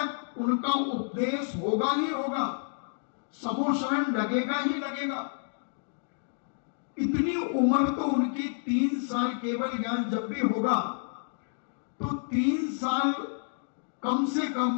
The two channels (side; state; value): right; silent; digital silence